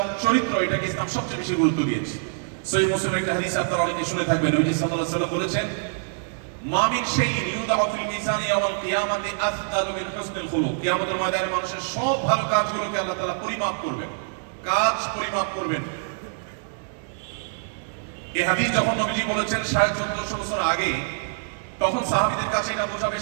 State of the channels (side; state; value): left; silent; digital silence